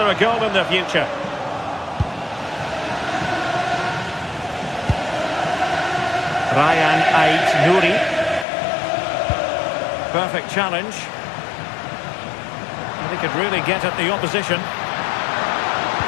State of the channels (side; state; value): right; drops out; at 8.5 s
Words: a goal in the future? Ryan Ait-Nouri. Perfect challenge. He could really get at the opposition.